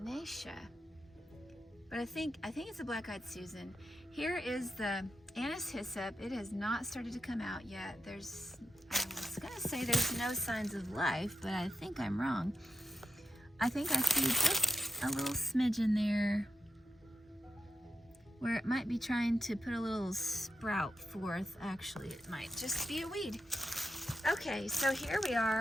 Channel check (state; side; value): normal; both; correlation 0.86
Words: but I think it's a black-eyed Susan. Here is the anise hyssop. It has not started to come out yet. I was gonna say there's no signs of life, but I think I'm wrong. I think I see just a little smidge in there where it might be trying to put a little sprout forth. Actually, it might just be a weed. Okay, so here we